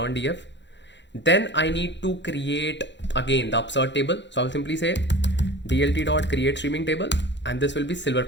df. Then I need to create again the upsert table. So I will simply say dlt.create streaming table, and this will be silver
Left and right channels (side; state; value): right; late; 0.52 ms